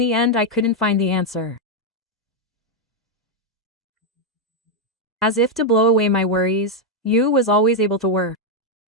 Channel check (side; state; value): both; normal; correlation 0.01